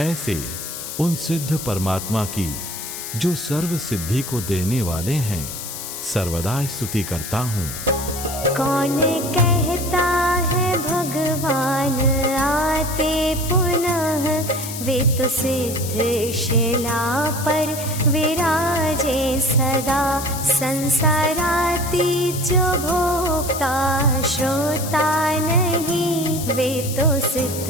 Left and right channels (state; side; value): noise; left; hiss, 8 dB below the sound